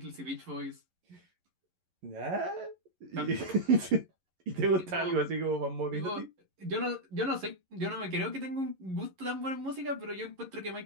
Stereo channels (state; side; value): late; left; 11 ms